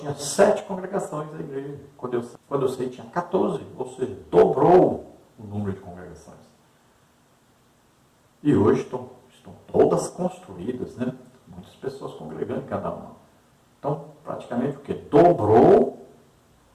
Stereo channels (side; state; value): both; identical; correlation 1.00